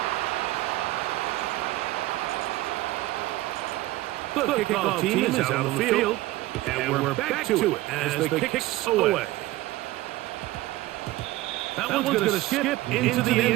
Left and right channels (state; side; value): quieter; left; 17.5 dB